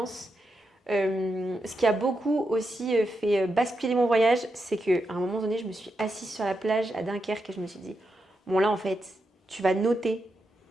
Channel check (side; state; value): both; normal; correlation 0.85